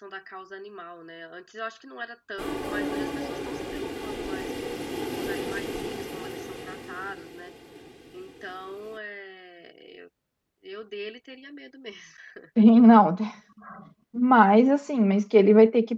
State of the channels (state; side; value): identical; both; correlation 1.00